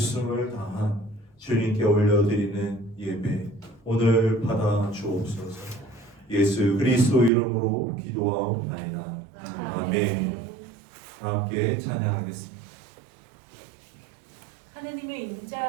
다한 주님께 올려드리는 예배 오늘 받아 주옵소서. 예수 그리스도 이름으로 기도하옵나이다. 아멘. 함께 찬양하겠습니다. 하나님의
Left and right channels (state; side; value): drops out; left; at 7.3 s